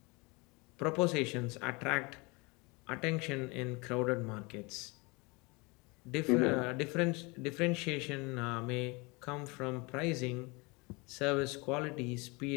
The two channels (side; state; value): right; quieter; 27.2 dB